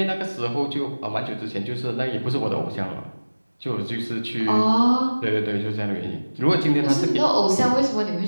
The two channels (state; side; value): inverted; both; correlation -1.00